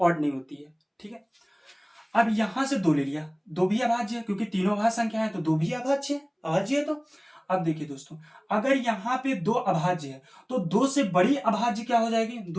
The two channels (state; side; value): identical; both; correlation 1.00